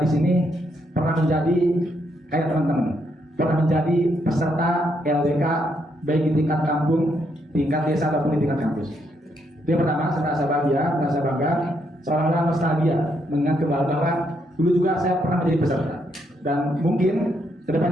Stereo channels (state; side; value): normal; both; correlation 0.76